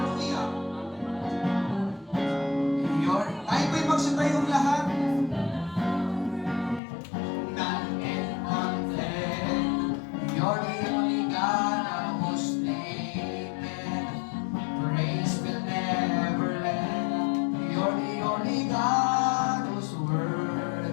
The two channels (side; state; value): right; drops out; at 6.8 s